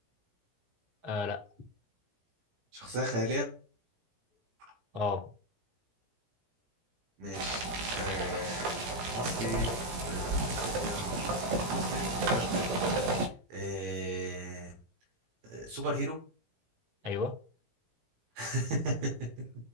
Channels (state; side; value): late; left; 17 ms